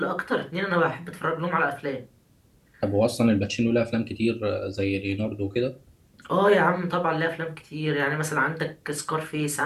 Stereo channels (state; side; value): identical; both; correlation 1.00